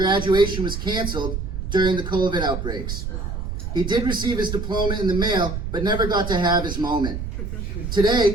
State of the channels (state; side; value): noise; right; rumble, 4 dB below the sound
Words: was canceled during the COVID outbreaks. He did receive his diploma in the mail, but never got to have his moment.